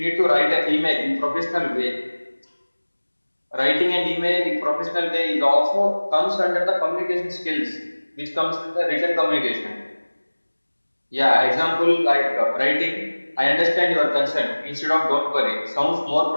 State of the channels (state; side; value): inverted; both; correlation -1.00